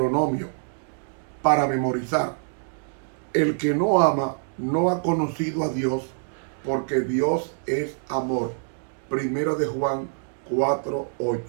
para memorizar. El que no ama no ha conocido a Dios, porque Dios es amor. Primero de Juan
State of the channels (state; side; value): silent; left; digital silence